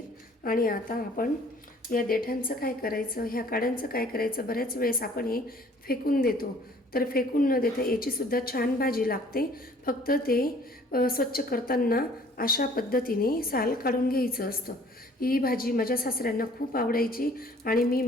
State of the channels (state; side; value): normal; both; correlation 0.55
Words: आणि आता आपण या देठांचं काय करायचं, ह्या काड्यांचं काय करायचं, बऱ्याच वेळेस आपण हे फेकून देतो, तर फेकून न देता याची सुद्धा छान भाजी लागते। फक्त ते स्वच्छ करताना अशा पद्धतीने साल काढून घ्यायचं असतं। ही भाजी माझ्या सासऱ्यांना खूप आवडायची आणि मी